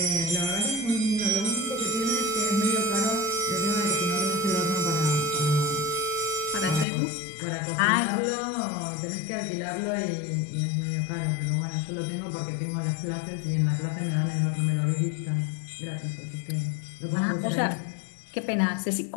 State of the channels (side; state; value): right; drops out; at 6.9 s